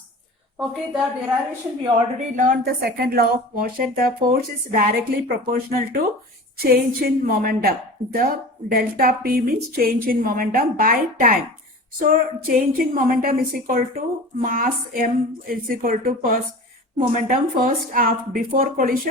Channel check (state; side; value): normal; both; correlation 0.36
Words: Okay, the derivation we already learned the second law of motion. The force is directly proportional to change in momentum. The delta P means change in momentum by time. So change in momentum is equal to mass m is equal to first momentum first before